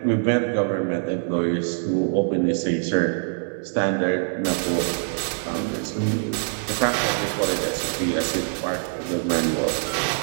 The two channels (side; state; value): left; silent; digital silence